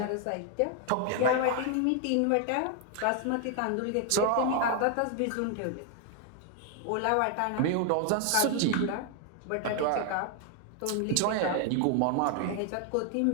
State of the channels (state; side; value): different; both; correlation 0.00